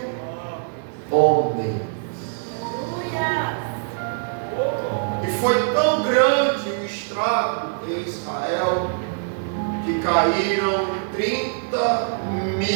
homens. E foi tão grande o estrago em Israel, que caíram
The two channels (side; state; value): left; silent; digital silence